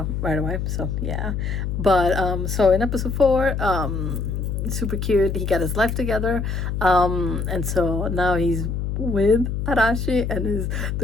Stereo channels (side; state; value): left; noise; hum, 2 dB below the sound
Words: away. So yeah, but so in episode 4, super cute. He got his life together, and so now he's with Arashi, and